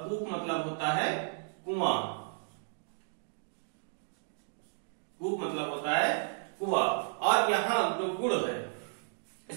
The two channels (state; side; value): silent; left; digital silence